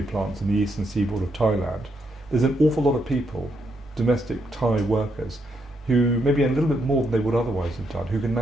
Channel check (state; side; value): normal; both; correlation 0.78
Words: plants in the eastern seaboard of Thailand, there's an awful lot of people, domestic Thai workers, who maybe a little bit more than they would otherwise have done, who can